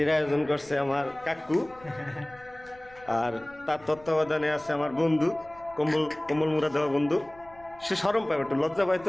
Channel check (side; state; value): left; noise; rumble, 24 dB below the sound